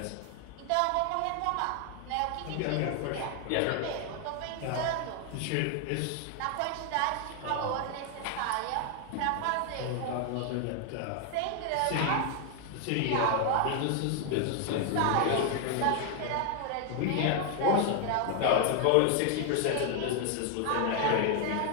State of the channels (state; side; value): different; both; correlation 0.00